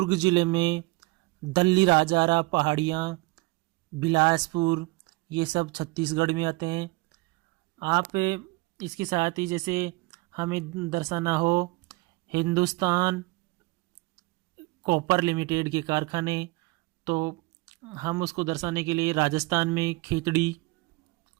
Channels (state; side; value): quieter; left; 24.1 dB